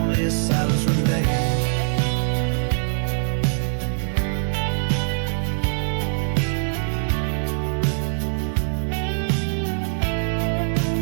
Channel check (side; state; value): left; silent; digital silence